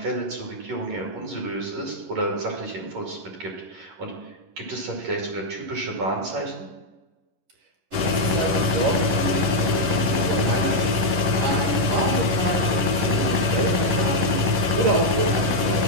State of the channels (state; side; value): late; left; 11 ms